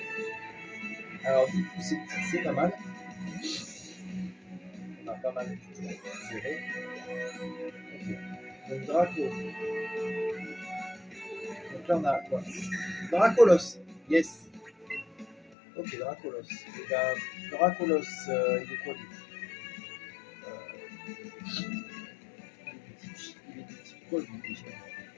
Alors, du coup, c'est pas mal. On a pas mal de choses géré. Ok. Donc, Draco. Donc là, on a quoi? Dracolos. Yes. Ok, Dracolos. Et ben, Dracolos, il est quoi lui? Il est de type quoi lui déjà?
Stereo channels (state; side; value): drops out; right; at 15.5 s